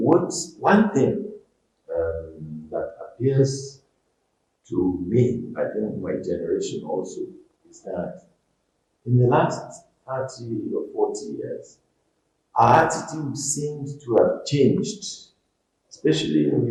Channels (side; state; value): both; identical; correlation 1.00